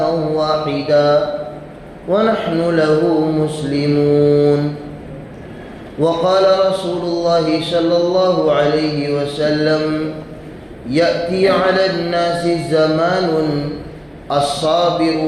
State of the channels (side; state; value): both; identical; correlation 1.00